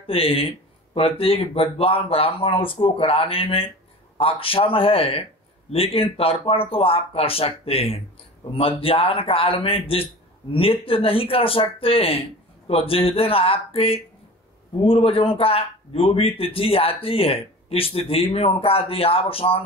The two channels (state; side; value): normal; both; correlation 0.37